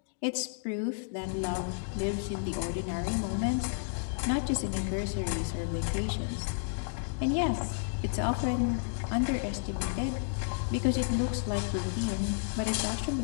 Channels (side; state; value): right; silent; digital silence